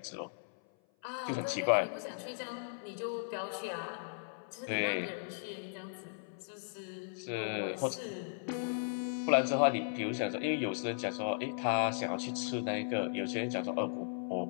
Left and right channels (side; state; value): right; silent; 53 dB below the other